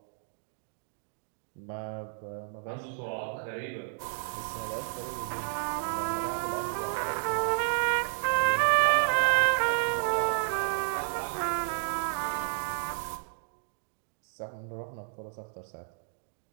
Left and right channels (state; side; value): silent; left; digital silence